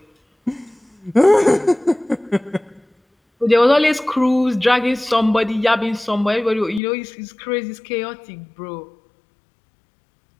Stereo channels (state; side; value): drops out; right; at 6.8 s